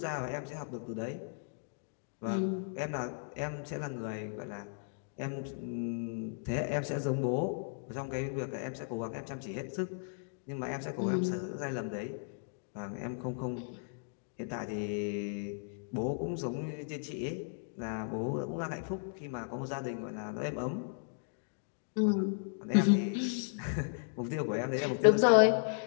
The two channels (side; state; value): right; silent; digital silence